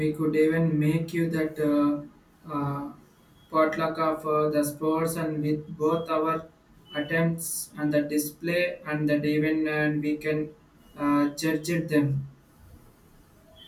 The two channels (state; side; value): identical; both; correlation 1.00